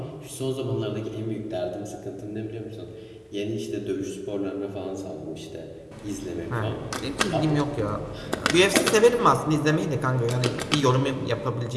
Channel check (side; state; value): both; identical; correlation 1.00